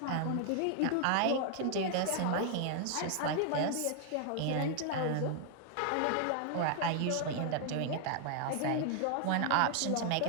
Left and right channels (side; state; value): both; different; correlation 0.00